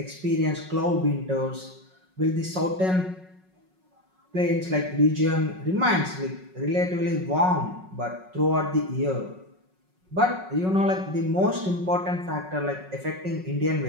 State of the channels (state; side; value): late; left; 5.4 ms